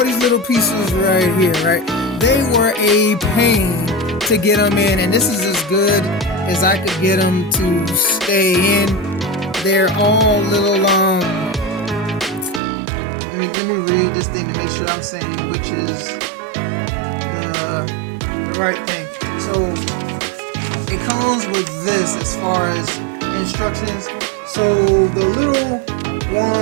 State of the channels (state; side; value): drops out; left; at 12.6 s